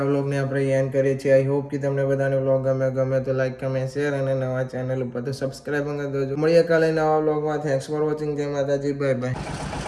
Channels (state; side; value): identical; both; correlation 1.00